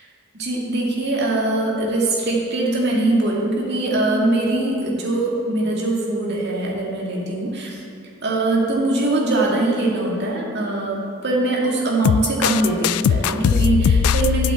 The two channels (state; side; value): normal; both; correlation 0.50